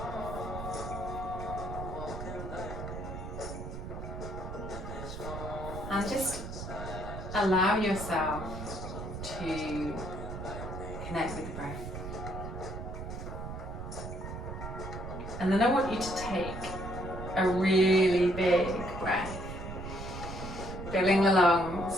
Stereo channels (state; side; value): noise; right; rumble, 8 dB below the sound